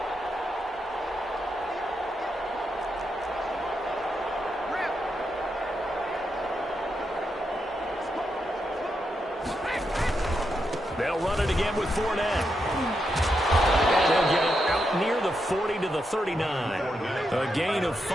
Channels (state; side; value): normal; both; correlation 0.84